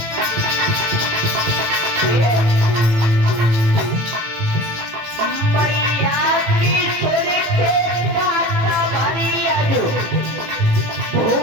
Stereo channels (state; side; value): late; left; 18 ms